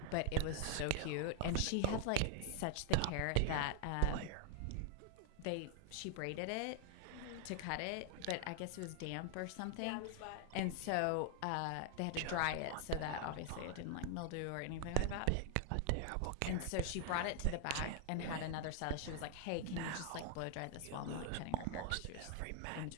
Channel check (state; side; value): different; both; correlation 0.00